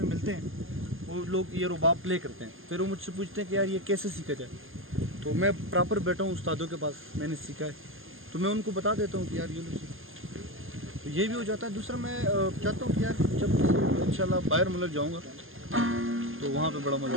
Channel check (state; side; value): late; left; 0.59 ms